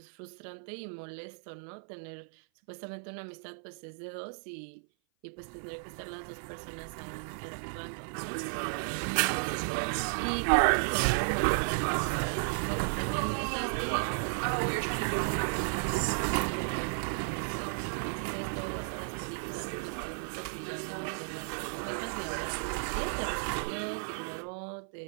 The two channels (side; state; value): left; silent; 55 dB below the other